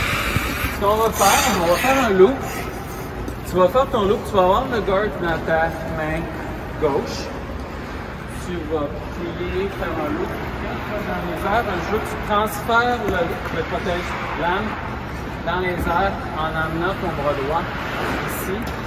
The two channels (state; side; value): identical; both; correlation 1.00